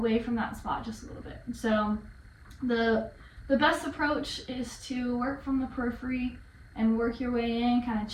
from that spot just a little bit. So the best approach is to work from the periphery and work your way in, kind of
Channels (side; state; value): both; identical; correlation 1.00